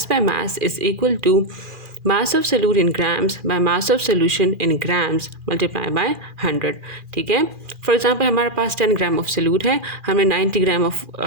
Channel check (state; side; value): late; left; 2.4 ms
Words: by mass is equal to mass of solute in grams by mass of solution in grams multiply by 100, ठीक है। फॉर एग्जांपल हमारे पास 10 ग्राम ऑफ सोल्यूट है, हमने 90 ग्राम ऑफ